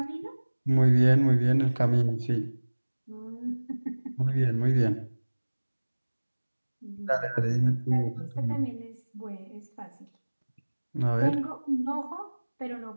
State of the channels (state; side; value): inverted; both; correlation -1.00